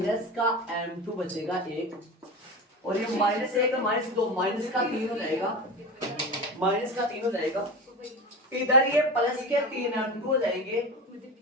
का m2 बचेगा 1, और ये माइनस 1 माइनस 2 माइनस का 3 हो जाएगा, माइनस का 3 हो जाएगा, इधर ये प्लस के 3m2 हो जाएंगे,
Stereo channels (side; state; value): both; normal; correlation 0.26